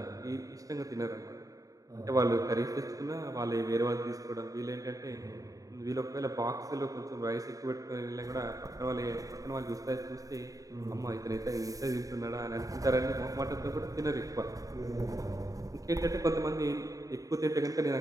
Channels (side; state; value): left; late; 0.17 ms